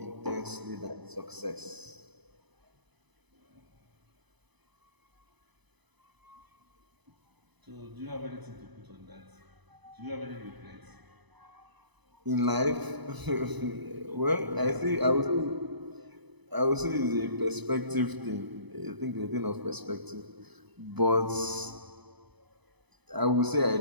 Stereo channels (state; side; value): late; left; 1.0 ms